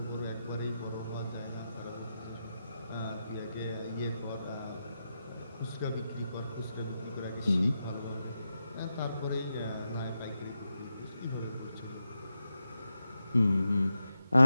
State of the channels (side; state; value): both; inverted; correlation -0.88